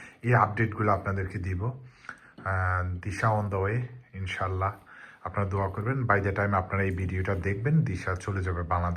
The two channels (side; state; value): both; identical; correlation 1.00